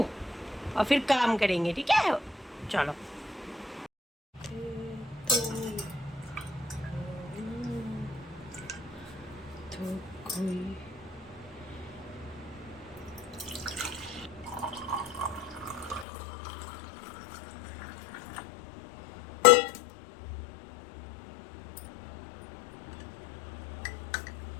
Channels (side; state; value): right; drops out; at 16.1 s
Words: और फिर काम करेंगे, ठीक है? चलो।